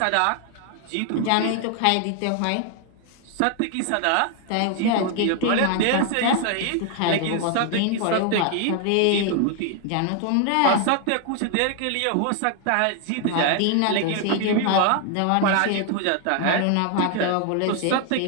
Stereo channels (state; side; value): different; both; correlation 0.00